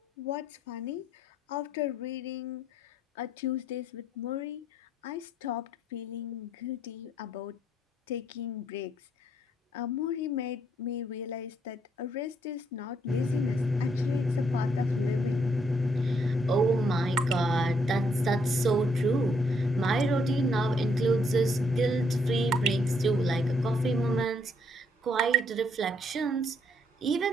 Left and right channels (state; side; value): normal; both; correlation 0.72